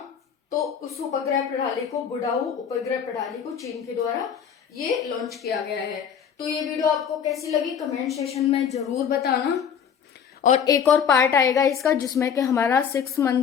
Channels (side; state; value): right; quieter; 7.6 dB